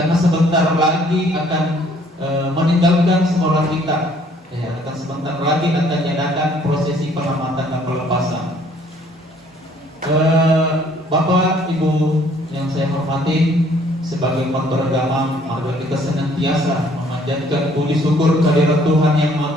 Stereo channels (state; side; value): normal; both; correlation 0.61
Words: sebentar lagi akan meninggalkan sekolah kita. Ya, akan sebentar lagi akan diadakan prosesi pengamatan dan pelepasan. Bapak, Ibu yang saya hormati, sebagai umat beragama, mari kita senantiasa memanjatkan puji syukur kehadirat Tuhan yang